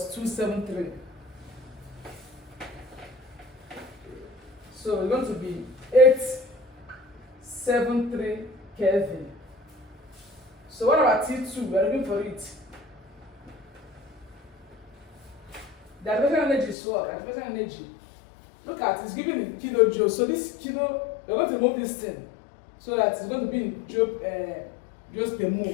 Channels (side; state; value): right; drops out; at 16.8 s